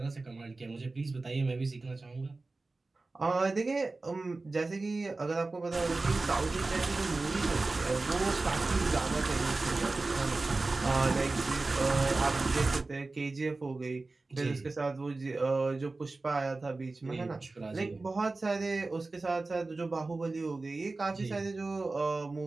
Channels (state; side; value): quieter; left; 3.4 dB